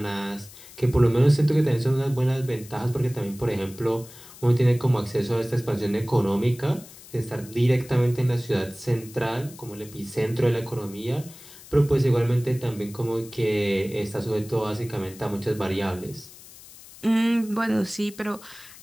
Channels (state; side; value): noise; left; hiss, 19 dB below the sound